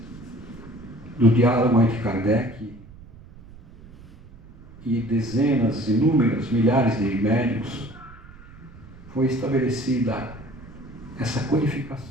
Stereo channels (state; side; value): noise; right; rumble, 20 dB below the sound